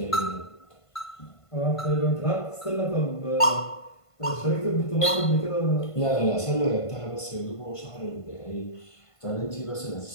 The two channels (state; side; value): late; right; 1.5 ms